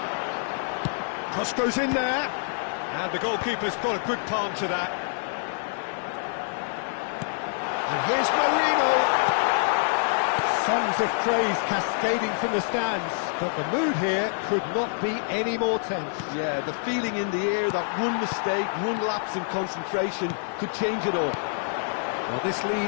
Cross goes in there, and the goalkeeper's got a good palm to that. And here's Marino. Songs of praise cascading from the stands, but the mood here could not be any more tense. Yeah, the feeling in the air that one mistake, one lapse in concentration could change it all. Well, this lead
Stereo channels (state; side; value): silent; right; digital silence